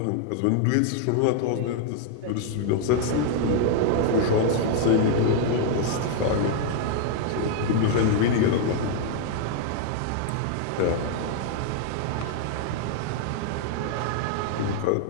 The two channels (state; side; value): different; both; correlation 0.00